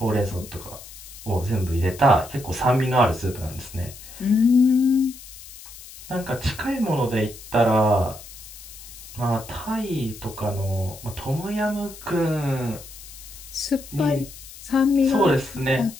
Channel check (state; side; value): noise; left; hiss, 16 dB below the sound